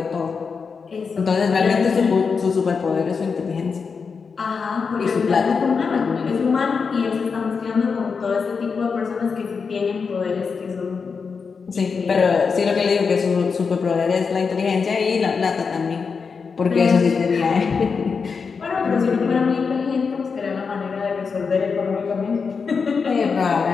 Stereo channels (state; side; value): quieter; right; 5.4 dB